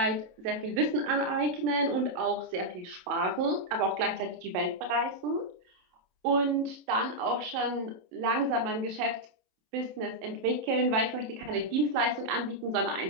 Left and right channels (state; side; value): late; left; 27 ms